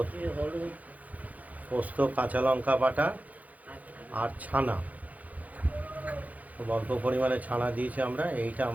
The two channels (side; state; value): left; late; 0.076 ms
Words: পোস্ত, কাঁচা লঙ্কা বাটা আর ছানা, খুব অল্প পরিমাণে ছানা দিয়েছি আমরা। এইটা